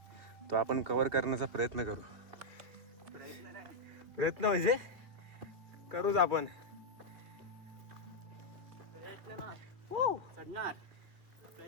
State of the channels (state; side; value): late; left; 2.8 ms